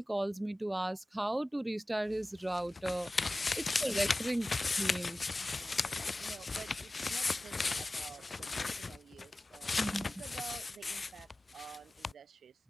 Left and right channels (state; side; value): normal; both; correlation 0.96